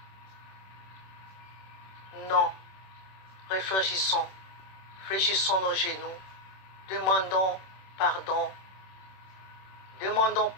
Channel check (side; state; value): right; late; 26 ms